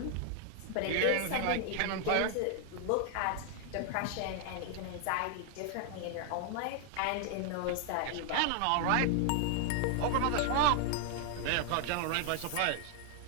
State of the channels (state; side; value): different; both; correlation 0.00